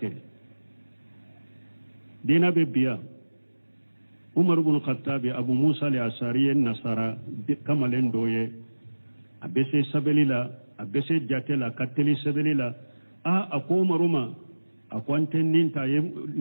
dina be biya Umar ibn Khattab Abu Musa al-Ashari nasara kamalen doye abese sabelila abese jatela kateli sebelila ako maruma akwanten ninta ye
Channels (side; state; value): both; inverted; correlation -1.00